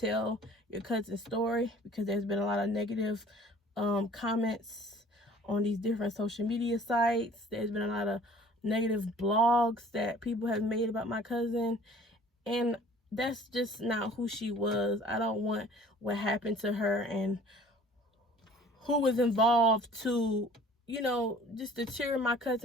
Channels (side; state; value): both; normal; correlation 0.50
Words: your cousin's story, because there's been a lot of negative comments on these different social media sites. There's been a lot of negative blogs that people have made about my cousin, and that's just not who she was. I don't want what happened to her and who was involved to, you know, just deter my